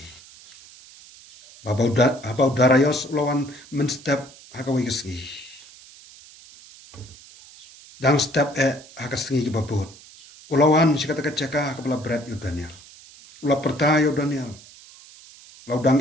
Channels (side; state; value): right; noise; hiss, 21 dB below the sound